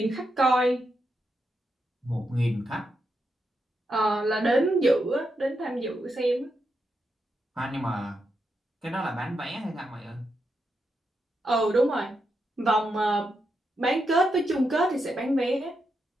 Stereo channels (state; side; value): normal; both; correlation 0.84